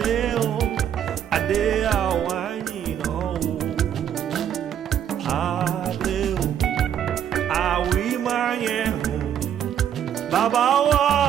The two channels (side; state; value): left; quieter; 9.5 dB